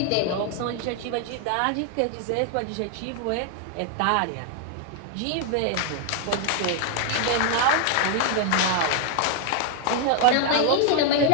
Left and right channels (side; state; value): both; different; correlation 0.00